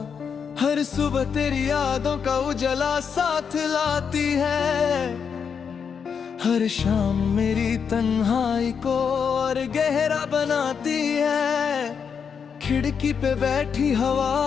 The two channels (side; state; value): right; quieter; 6.6 dB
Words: हर सुबह तेरी यादों का उजला साथ लाती है, हर शाम मेरी तन्हाई को और गहरा बनाती है। खिड़की पे बैठी हवा